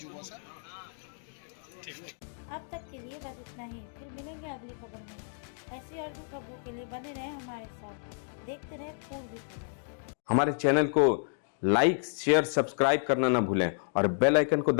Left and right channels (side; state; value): right; silent; digital silence